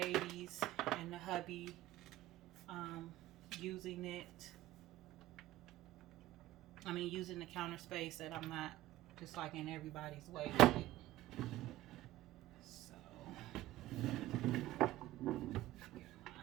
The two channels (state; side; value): quieter; left; 15.6 dB